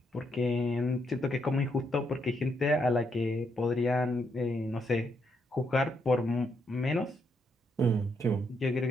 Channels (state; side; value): normal; both; correlation 0.77